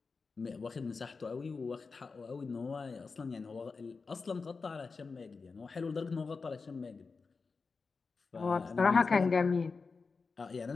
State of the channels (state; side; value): quieter; right; 4.5 dB